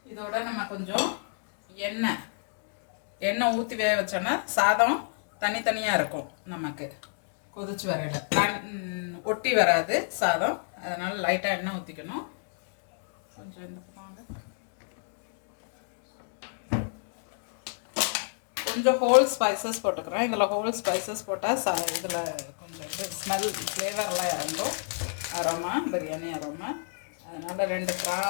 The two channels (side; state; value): right; silent; digital silence